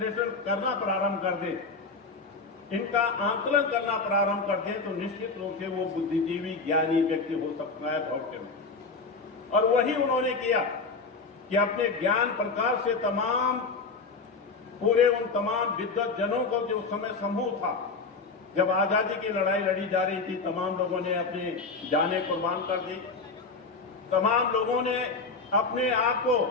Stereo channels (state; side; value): quieter; right; 4.2 dB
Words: करना प्रारंभ कर दे, इनका आंकलन करना प्रारंभ कर दे, तो निश्चित रूप से वो बुद्धिजीवी ज्ञानी व्यक्ति हो सकता है भविष्य में। और वही उन्होंने किया कि अपने ज्ञान प्रकाश से तमाम पूरे उन तमाम विद्वत जनों को जो उस समय समूह था, जब आजादी की लड़ाई लड़ी जा रही थी, तमाम लोगों ने अपने जानें कुर्बान कर दी, तमाम लोगों ने अपने आप को